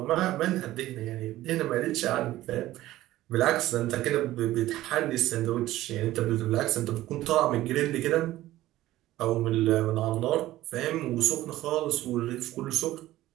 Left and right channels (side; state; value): left; quieter; 15.5 dB